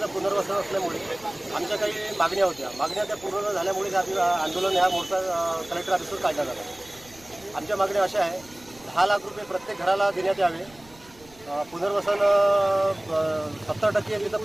पुनर्वसन असल्यामुळे आमच्या काही मागण्या होत्या. मागण्या त्या पूर्ण झाल्यामुळे आंदोलन ह्या मोर्चा कलेक्टर ऑफिसवर काढण्यात आला. आमच्या मागण्या अशा आहे, 10 लाख रुपये प्रत्येक घराला देण्यात यावे. पुनर्वसन 70% तिथं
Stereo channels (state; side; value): noise; right; rumble, 25 dB below the sound